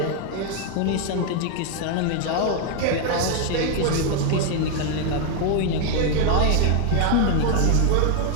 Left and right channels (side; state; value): both; different; correlation 0.00